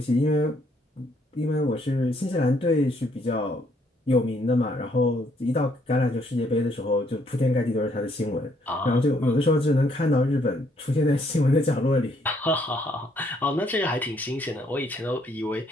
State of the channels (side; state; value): both; normal; correlation 0.69